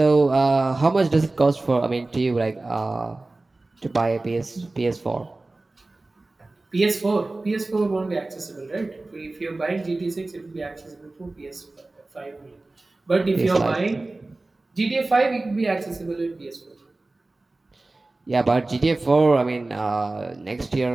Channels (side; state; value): left; quieter; 3.1 dB